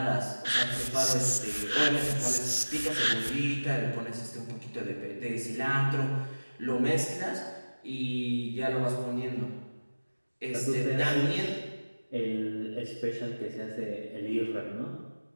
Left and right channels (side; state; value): both; inverted; correlation -1.00